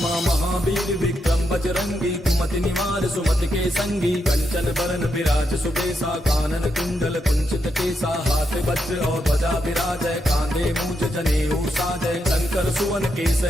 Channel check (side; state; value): both; normal; correlation 0.82